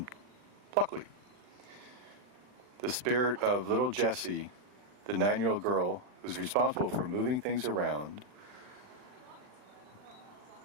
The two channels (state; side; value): late; left; 40 ms